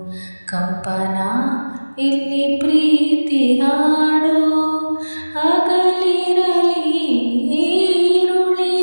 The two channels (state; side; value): inverted; both; correlation -1.00